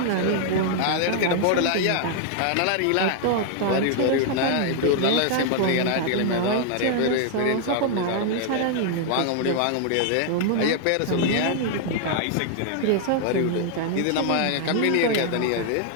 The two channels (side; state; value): both; different; correlation 0.00